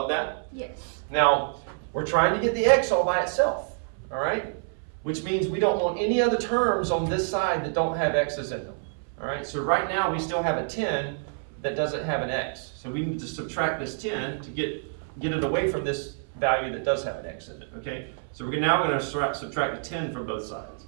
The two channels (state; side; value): silent; left; 60 dB below the other